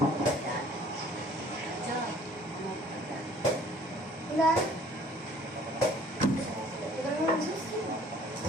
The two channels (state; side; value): normal; both; correlation 0.55